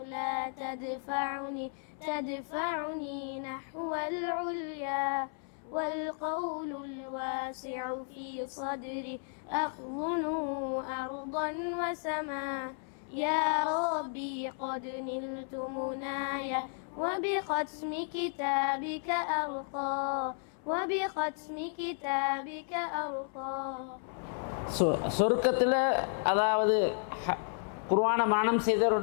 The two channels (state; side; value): silent; right; 56 dB below the other